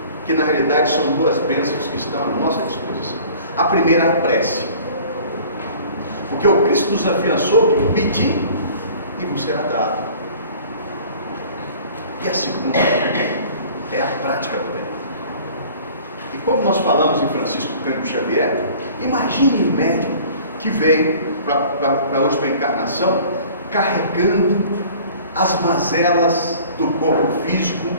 que na realidade são duas bênçãos que estão à nossa disposição. A primeira é a prece, porque o Cristo nos afiançou que pedir e vos será dado. E a segunda é a prática do bem. E como nós falamos em Francisco Cândido Xavier, imagine o médico que veio para a última encarnação carregando as mazelas do corpo físico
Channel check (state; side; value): inverted; both; correlation -0.48